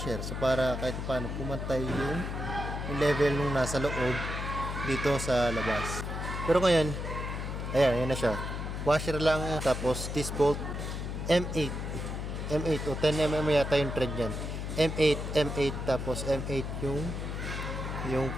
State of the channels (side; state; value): left; noise; hum, 4 dB below the sound